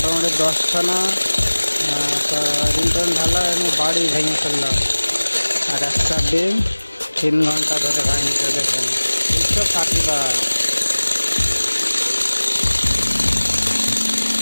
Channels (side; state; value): both; inverted; correlation -1.00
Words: 10খানা রিন্টন ঢালা আমি বাড়ি ভেঙে ফেললাম, আর একটা ডিম 3 ঘন্টা ধরে ভাঙছে। দেখেন 260 বার।